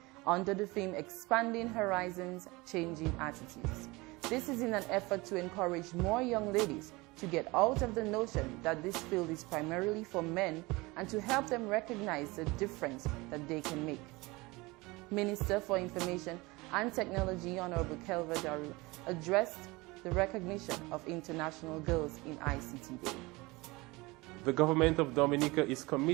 under the theme Expanding Horizons, Changing Attitudes. This is in an effort to encourage more young ladies to get out of the notion that this field is primarily for men and to help them recognize the difference that they can make. Minister for Information and Technology, Honorable Kelva Daru, addressed the recognition of International Girls in ICT Day. The government of Dominica is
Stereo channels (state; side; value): quieter; left; 23.1 dB